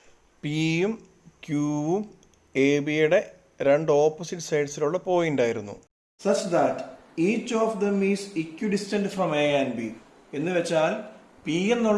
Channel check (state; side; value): identical; both; correlation 1.00